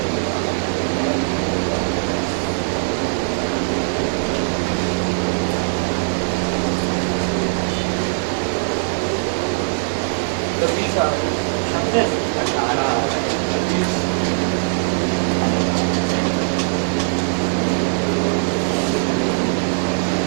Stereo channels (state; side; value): silent; left; digital silence